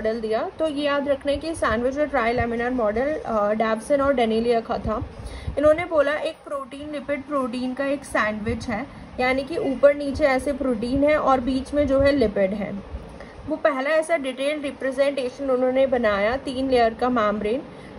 दिया। तो ये याद रखना है कि सैंडविच और ट्राई लैमिनार मॉडल डैप्सन और डेनिली का था। इन्होंने बोला एक प्रोटीन लिपिड प्रोटीन का एक सैंडविच है, यानी कि ऊपर नीचे ऐसे प्रोटीन है और बीच में जो है लिपिड है। वो पहला ऐसा डिटेल्ड रिप्रेजेंटेशन उन्होंने बनाया 3 लेयर का मेम्ब्रेन।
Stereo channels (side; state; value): both; identical; correlation 1.00